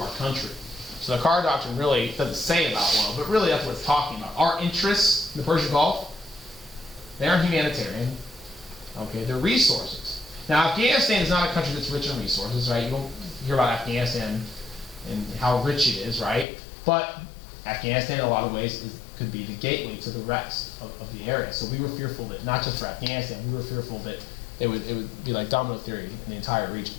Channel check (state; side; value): drops out; right; at 16.4 s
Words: country. So the Carter Doctrine really doesn't say about oil, but really that's what it's talking about. Our interests in the Persian Gulf, they aren't humanitarian. They're resources. Now, Afghanistan is not a country that's rich in resources, right? You don't hear about Afghanistan and how rich it is, right? But Afghanistan, in a lot of ways, could be the gateway to the rest of the area. So we were fearful that, not just for Afghanistan, we were fearful that it would be like domino theory in the entire region.